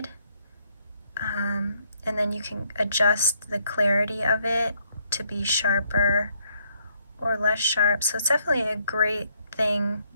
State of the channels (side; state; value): both; inverted; correlation -0.71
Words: And then you can adjust the clarity of it to be sharper or less sharp. So it's definitely a great thing